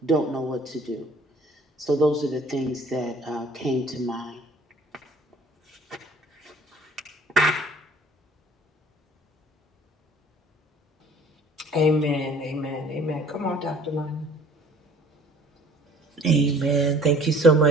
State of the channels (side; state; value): both; normal; correlation 0.53